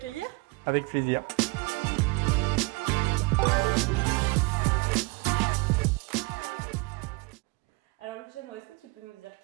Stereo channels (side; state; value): left; quieter; 26.8 dB